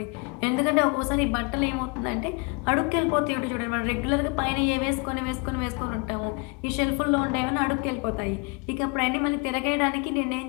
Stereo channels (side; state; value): right; quieter; 31.6 dB